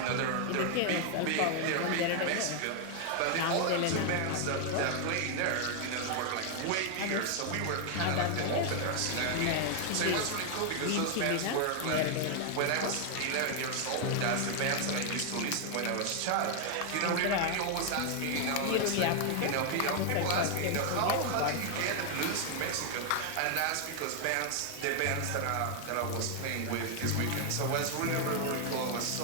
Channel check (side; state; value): both; different; correlation 0.00